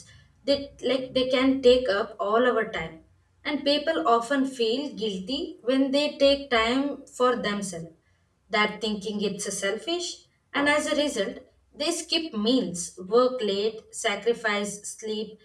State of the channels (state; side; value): identical; both; correlation 1.00